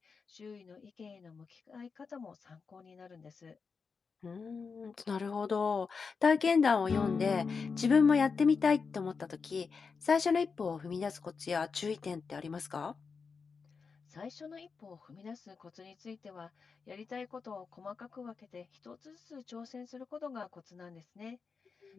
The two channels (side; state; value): right; quieter; 5.2 dB